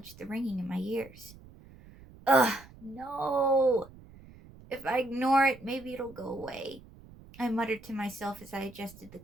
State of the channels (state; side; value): noise; right; rumble, 21 dB below the sound